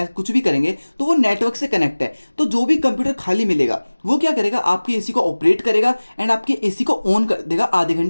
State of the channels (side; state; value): both; inverted; correlation -1.00